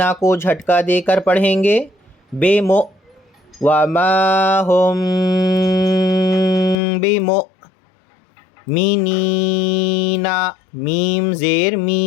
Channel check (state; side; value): drops out; right; at 6.8 s